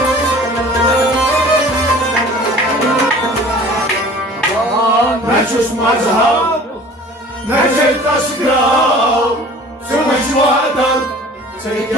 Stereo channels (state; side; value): normal; both; correlation 0.46